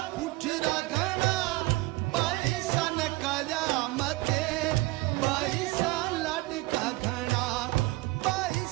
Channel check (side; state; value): left; quieter; 21.2 dB